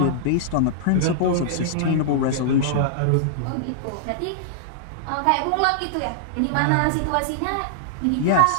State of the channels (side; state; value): both; different; correlation -0.01